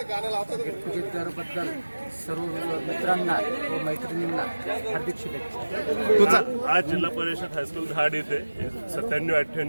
गेट टुगेदरबद्दल सर्व मित्रांना व मैत्रिणींना हार्दिक शुभेच्छा. आज जिल्हा परिषद हायस्कूल धाड येथे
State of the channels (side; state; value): both; inverted; correlation -1.00